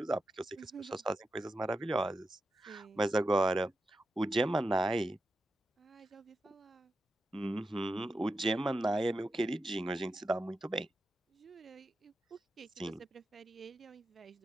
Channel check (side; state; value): both; normal; correlation 0.89